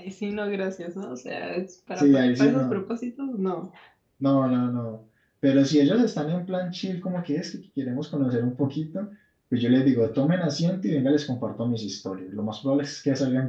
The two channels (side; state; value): both; identical; correlation 1.00